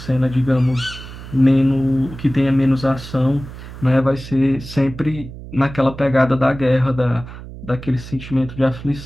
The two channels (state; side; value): noise; right; hum, 14 dB below the sound